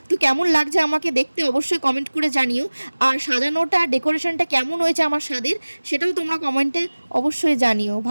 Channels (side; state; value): both; inverted; correlation -1.00